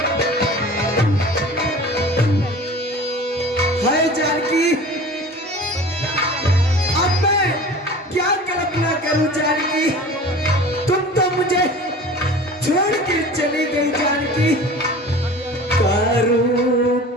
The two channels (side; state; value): both; normal; correlation 0.40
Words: हाय जानकी, अब मैं क्या कल्पना करूं जानकी? तुम तो मुझे छोड़ के चली गई जानकी। करूं